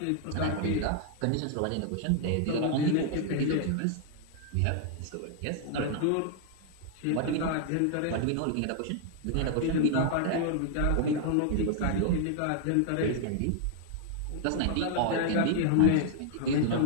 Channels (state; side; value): different; both; correlation 0.00